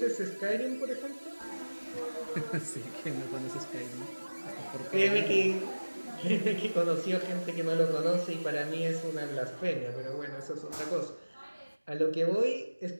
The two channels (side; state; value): both; inverted; correlation -1.00